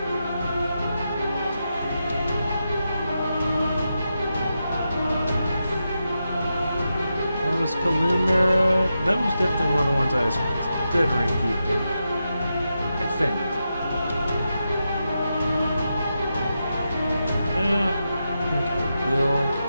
That was Kalumera. That was definitely one of the ones I was considering keeping, I think. I think I will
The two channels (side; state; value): both; inverted; correlation -0.88